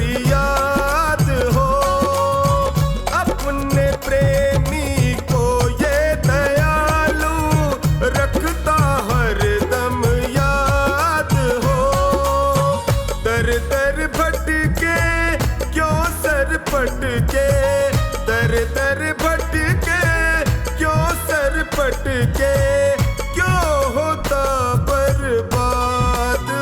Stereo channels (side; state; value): both; identical; correlation 1.00